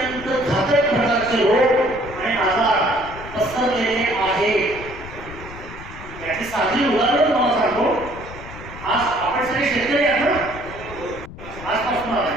घातक प्रकारचे रोग आणि आजार पसरलेले आहेत. याची साधी उदाहरण तुम्हाला सांगतो. आज आपण सगळे शेतकरी आहात ना,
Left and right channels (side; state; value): left; noise; rumble, 14 dB below the sound